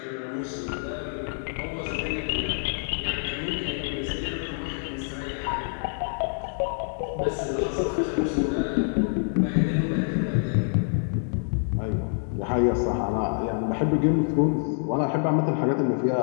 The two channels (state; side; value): silent; right; digital silence